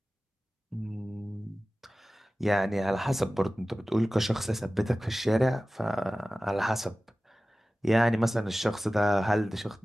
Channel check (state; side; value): normal; both; correlation 0.96